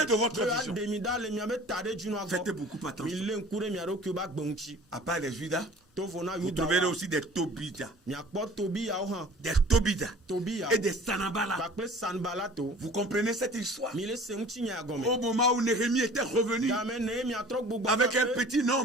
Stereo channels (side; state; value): both; normal; correlation 0.46